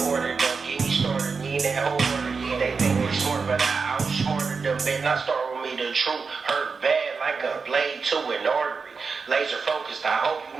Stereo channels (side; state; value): left; quieter; 5.0 dB